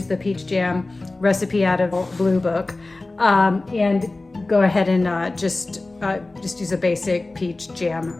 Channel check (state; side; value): quieter; right; 3.1 dB